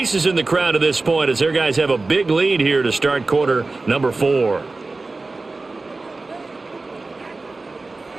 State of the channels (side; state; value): left; quieter; 3.5 dB